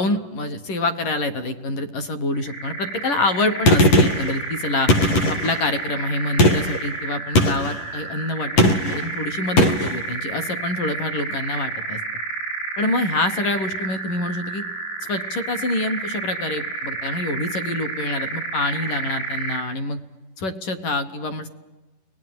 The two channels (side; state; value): right; late; 11 ms